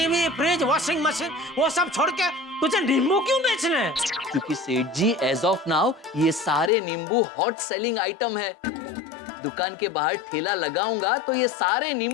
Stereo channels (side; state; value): right; drops out; at 6.7 s